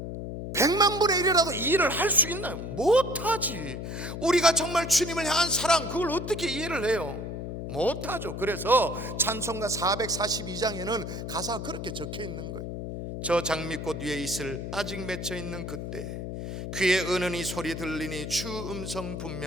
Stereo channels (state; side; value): noise; left; hum, 6 dB below the sound